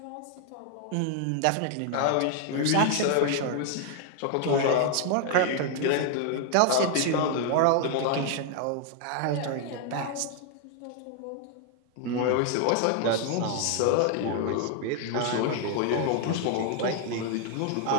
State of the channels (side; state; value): both; different; correlation 0.00